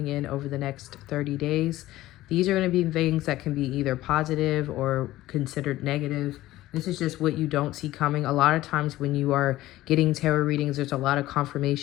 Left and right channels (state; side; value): quieter; right; 16.1 dB